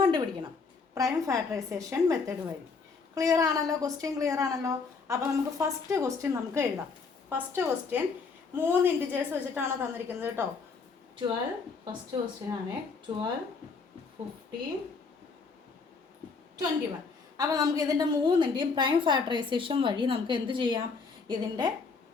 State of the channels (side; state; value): right; quieter; 4.7 dB